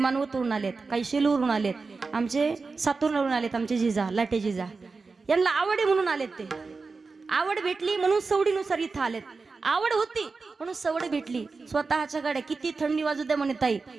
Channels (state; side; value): quieter; left; 4.3 dB